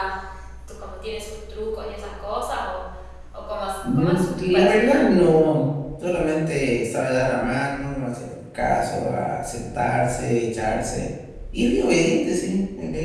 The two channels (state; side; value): identical; both; correlation 1.00